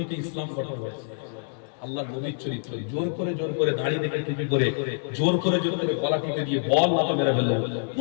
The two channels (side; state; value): right; silent; digital silence